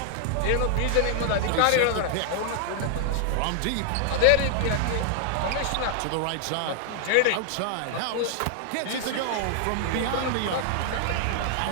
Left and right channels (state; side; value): different; both; correlation 0.00